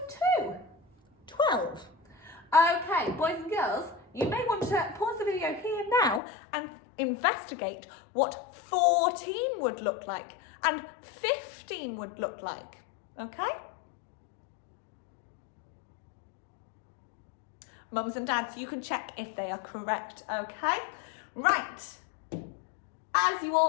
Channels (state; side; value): drops out; right; at 6.2 s